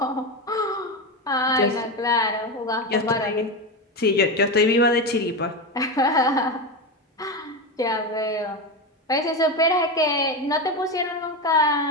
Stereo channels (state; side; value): normal; both; correlation 0.16